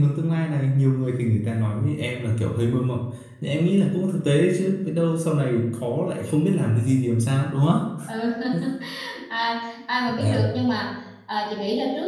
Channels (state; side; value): identical; both; correlation 1.00